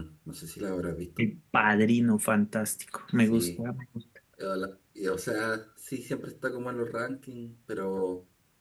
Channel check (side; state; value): both; identical; correlation 1.00